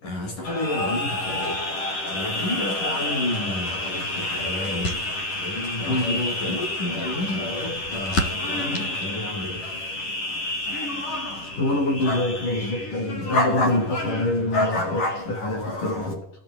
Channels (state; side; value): late; right; 11 ms